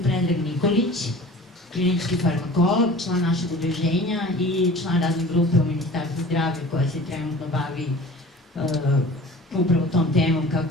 Predrag Nikolić, klinički farmakolog, član našeg udruženja i član radne grupe u Ministarstvu zdravlja koja se trenutno bavi upravo tom temom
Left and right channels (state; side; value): normal; both; correlation 0.43